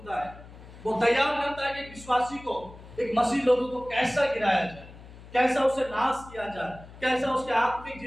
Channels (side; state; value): left; noise; hum, 18 dB below the sound